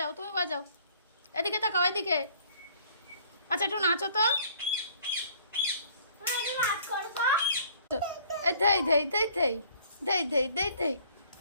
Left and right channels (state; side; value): inverted; both; correlation -0.57